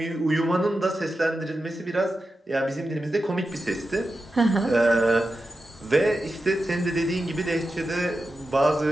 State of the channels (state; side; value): normal; both; correlation 0.91